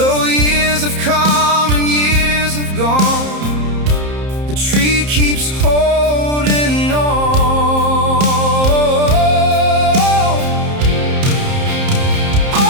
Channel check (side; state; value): left; late; 30 ms